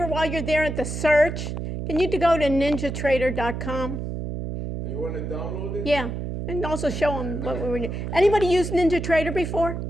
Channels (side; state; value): right; noise; hum, 5 dB below the sound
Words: while you're there at the search? Can you go to ninjatrader.com? And you want to download it? Yeah. And also show them what we were doing. Anybody used NinjaTrader before?